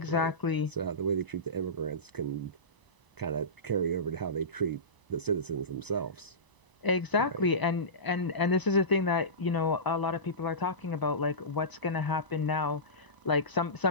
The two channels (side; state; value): right; late; 1.0 ms